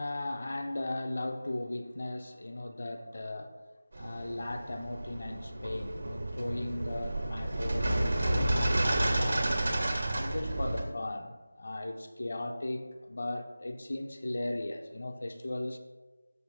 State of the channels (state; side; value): inverted; both; correlation -0.96